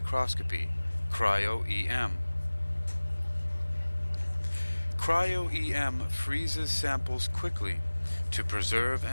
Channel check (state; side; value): inverted; both; correlation -1.00